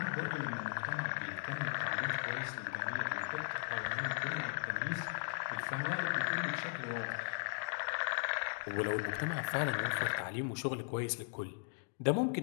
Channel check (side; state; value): right; silent; digital silence